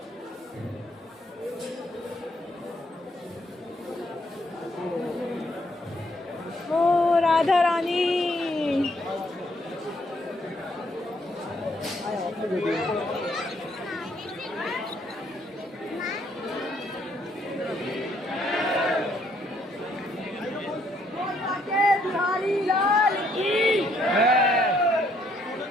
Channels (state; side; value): normal; both; correlation 0.69